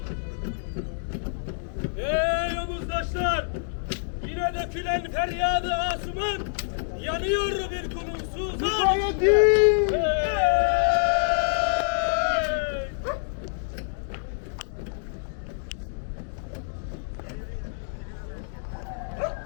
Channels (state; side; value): silent; right; digital silence